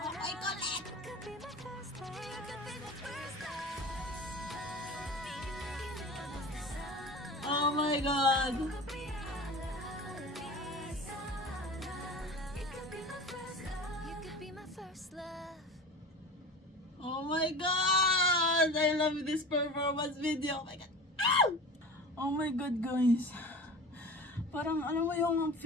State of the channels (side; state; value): both; normal; correlation 0.34